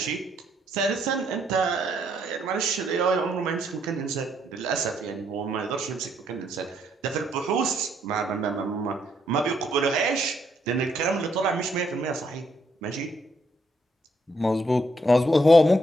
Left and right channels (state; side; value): normal; both; correlation 0.73